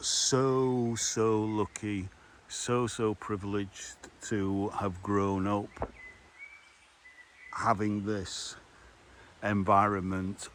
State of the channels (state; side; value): identical; both; correlation 1.00